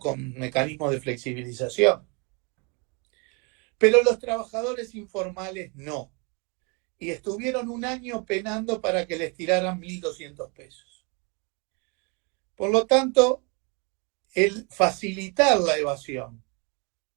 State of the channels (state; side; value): quieter; left; 32.6 dB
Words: mecanismos de flexibilización. pero los trabajadores informales no. Y estuvieron un año penando para que les tiraran 1.200 pesos. Por lo tanto, el facilitar la evasión